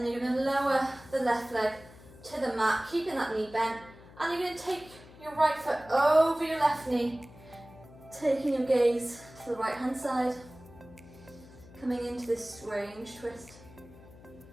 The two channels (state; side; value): noise; left; hum, 21 dB below the sound